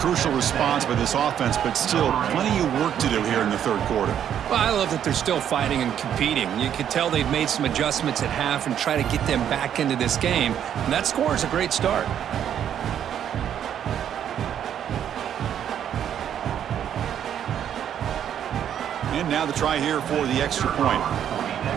response by this offense, but still plenty of work to do here in the third quarter. Well, I love that they're still fighting and competing. You could tell they've made some adjustments at half and try to get them back into this game. And that score is a great start. And now the try here for the extra point.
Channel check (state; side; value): quieter; left; 9.5 dB